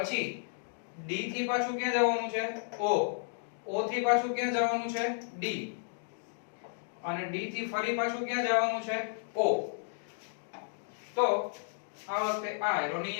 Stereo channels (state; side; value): silent; right; digital silence